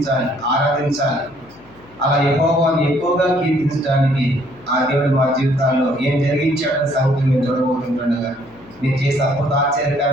ఆరాధించాలి. అలా యెహోవాను ఎక్కువగా కీర్తించడానికి ఆ దేవుడు మా జీవితాల్లో ఏం జరిగించాడని సంగతి మేము చూడబోతుండగా నేను చేసే అద్భుత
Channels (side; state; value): left; noise; hum, 27 dB below the sound